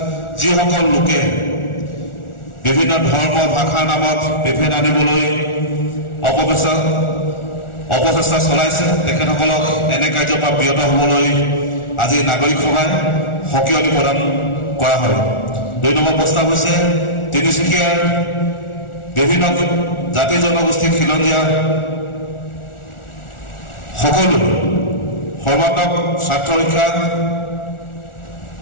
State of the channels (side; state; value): right; late; 1.4 ms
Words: যিসকল লোকে বিভিন্ন ধৰ্ম ভাষাৰ নামত বিভেদ আনিবলৈ অপচেষ্টা চলাইছে তেখেতসকলক এনে কাৰ্যৰ পৰা বিৰত হ'বলৈ আজি নাগৰিক সভাই সকিয়নি প্ৰদান কৰা হয়। 2 নম্বৰ প্ৰস্তাৱ হৈছে তিনিচুকীয়াৰ বিভিন্ন জাতি জনগোষ্ঠী খিলঞ্জীয়া সকলো সৰ্বাত্মক স্বাৰ্থ ৰক্ষা